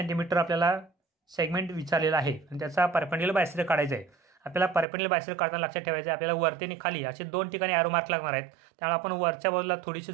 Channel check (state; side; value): drops out; left; at 4.9 s